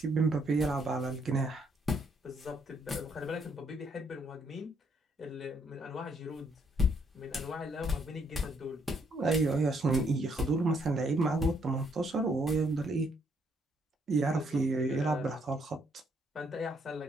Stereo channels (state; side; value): normal; both; correlation 0.71